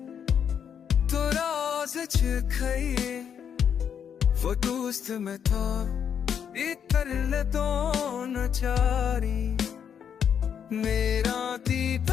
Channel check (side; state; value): right; quieter; 8.0 dB